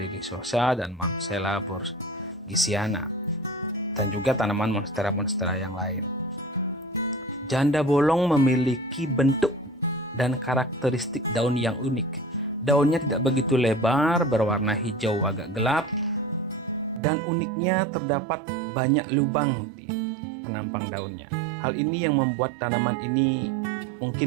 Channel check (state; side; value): drops out; left; at 17.0 s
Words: dan Monstera borgesiana, dan juga tanaman monstera-monstera yang lain. Janda bolong memiliki bentuk dan karakteristik daun yang unik. Daunnya tidak begitu lebar, berwarna hijau agak gelap, dan uniknya terdapat banyak lubang di penampang daunnya. Hal ini yang membuat tanaman ini